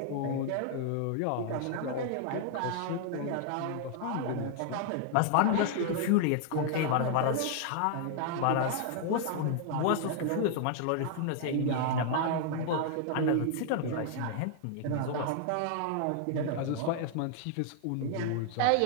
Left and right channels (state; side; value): different; both; correlation 0.00